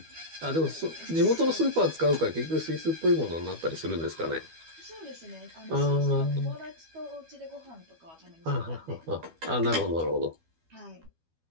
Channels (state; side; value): late; left; 12 ms